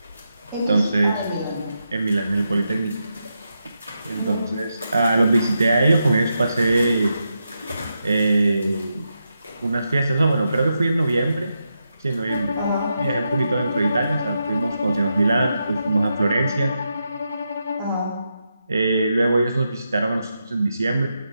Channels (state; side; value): inverted; both; correlation -0.85